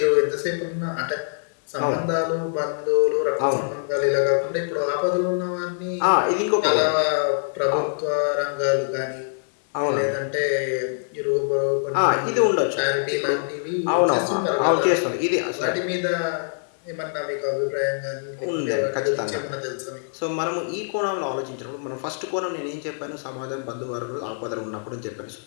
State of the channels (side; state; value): right; silent; digital silence